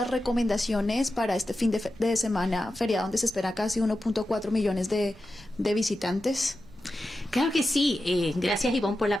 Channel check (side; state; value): both; normal; correlation 0.92